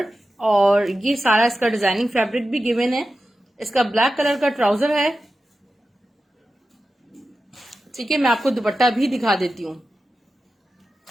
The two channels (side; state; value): both; normal; correlation 0.92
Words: और ये सारा इसका डिजाइनिंग फैब्रिक भी गिवन है। इसका ब्लैक कलर का ट्राउजर है। ठीक है, मैं आपको दुपट्टा भी दिखा देती हूँ।